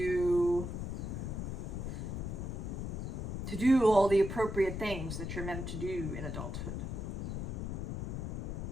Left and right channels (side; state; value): left; noise; rumble, 4 dB below the sound